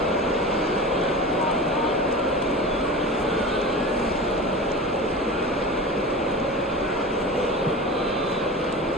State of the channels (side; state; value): both; normal; correlation 0.31